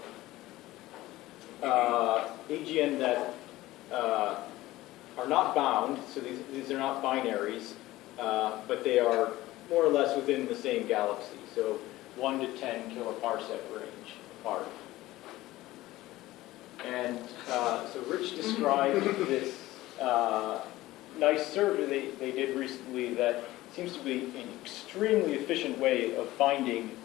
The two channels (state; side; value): quieter; right; 17.1 dB